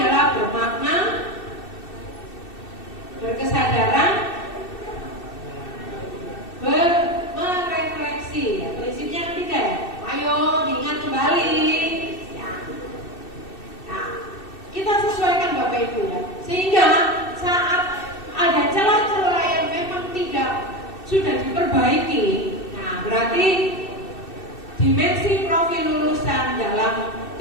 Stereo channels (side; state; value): right; late; 2.6 ms